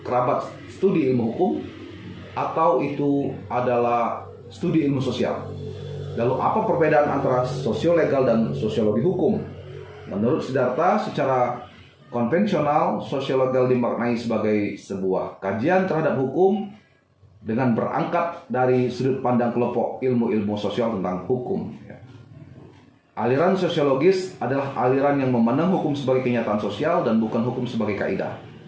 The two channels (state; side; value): identical; both; correlation 1.00